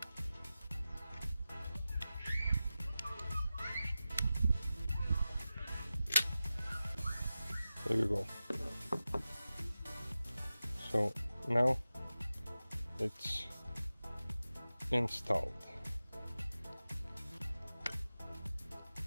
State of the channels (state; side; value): inverted; both; correlation -0.94